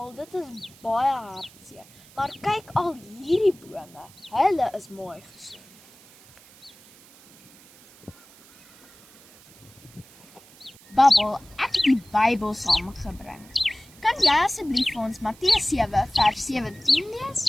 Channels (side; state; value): right; noise; hiss, 24 dB below the sound